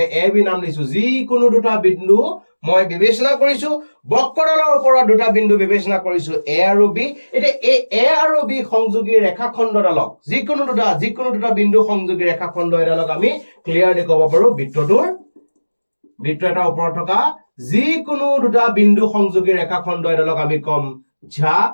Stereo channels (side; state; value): both; inverted; correlation -1.00